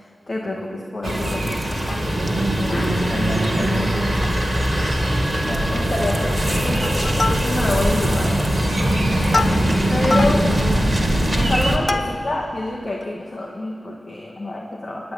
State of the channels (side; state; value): both; normal; correlation 0.94